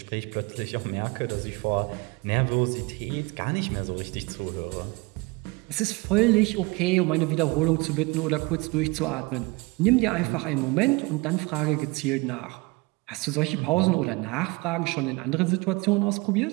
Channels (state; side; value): quieter; left; 25.4 dB